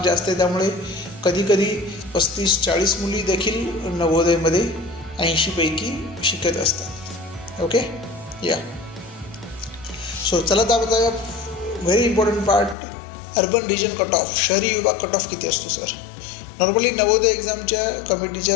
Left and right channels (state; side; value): drops out; right; at 12.8 s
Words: जास्त आहे. त्यामुळे कधीकधी 35-40 मुली देखील नवोदयमध्ये 80 पैकी शिकत असतात. ओके, या सो चला तर बघा very important part, urban region cut off शहरी विभाग कट ऑफ किती असतो सर. नॉर्मली नवोदय एक्झामच्या कमिटीच्या